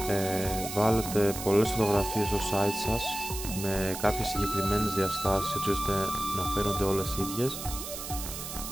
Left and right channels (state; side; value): noise; right; hiss, 8 dB below the sound